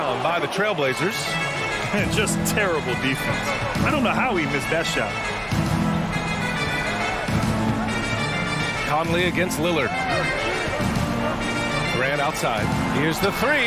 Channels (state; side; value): identical; both; correlation 1.00